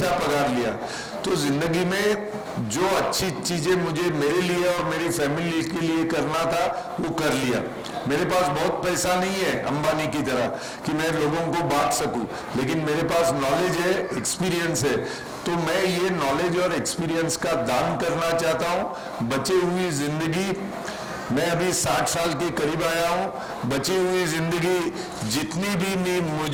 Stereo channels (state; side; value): identical; both; correlation 1.00